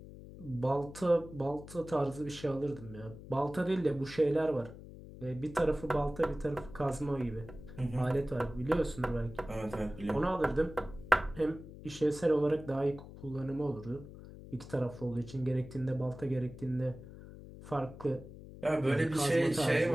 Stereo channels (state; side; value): noise; left; hum, 15 dB below the sound